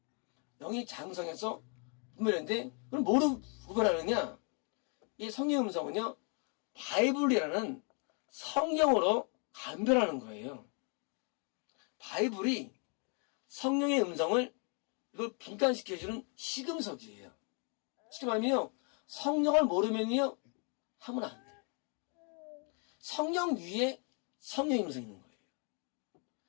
영이 장성해서 분별했는데, 그럼 뭐로 구별하느냐? 이 성령 음성은요, 바이블이라는 성경으로 감별하는 거예요. 바이블이 성령의 음성을 이걸 분간시켜주는 시금석이에요. 쉽게 말하면요, 성령을 모르면요, 하면 안 돼요. 성령 위에 성령의 음성이 있는 거예요.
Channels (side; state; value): right; quieter; 38.7 dB